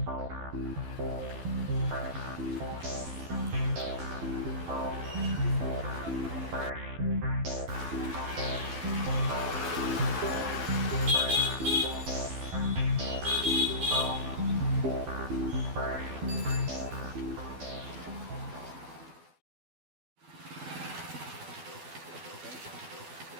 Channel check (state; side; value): late; left; 12 ms